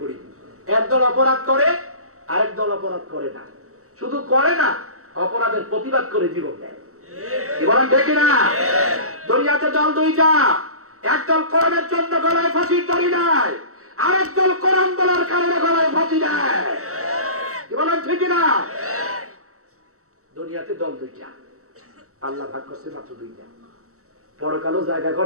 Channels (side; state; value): left; late; 0.64 ms